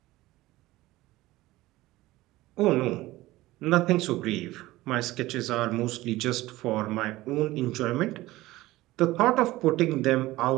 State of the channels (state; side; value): quieter; left; 17.8 dB